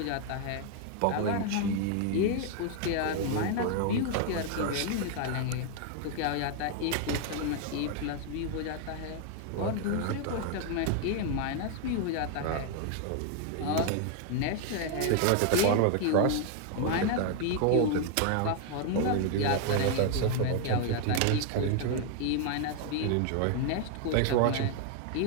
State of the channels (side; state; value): both; different; correlation 0.00